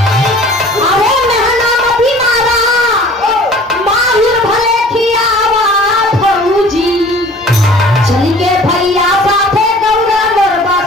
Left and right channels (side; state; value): both; normal; correlation 0.48